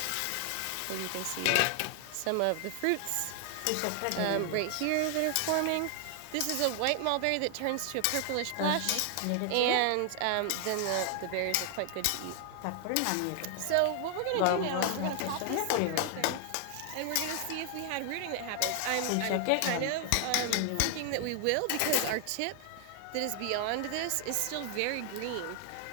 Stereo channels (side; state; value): both; different; correlation 0.00